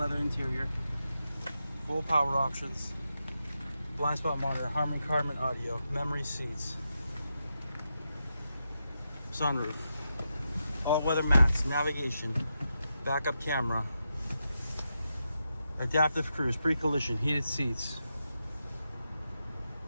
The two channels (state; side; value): inverted; both; correlation -0.87